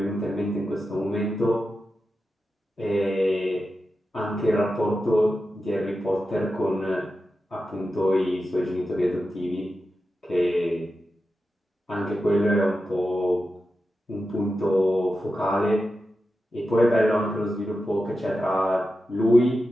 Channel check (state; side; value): normal; both; correlation 0.91